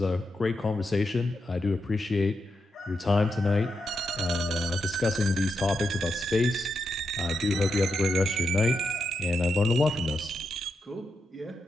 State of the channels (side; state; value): both; normal; correlation 0.85